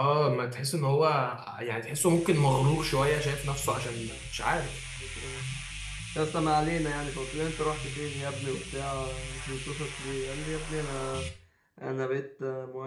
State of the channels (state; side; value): identical; both; correlation 1.00